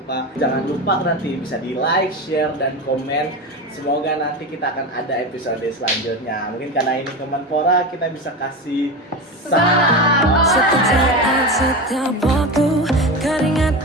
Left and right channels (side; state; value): both; normal; correlation 0.23